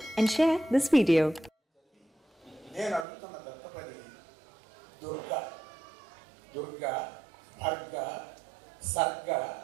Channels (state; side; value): drops out; left; at 3.1 s